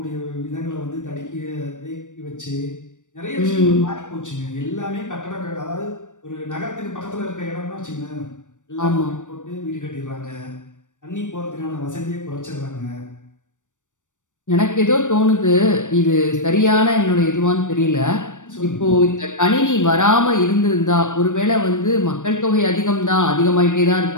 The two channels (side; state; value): right; late; 0.86 ms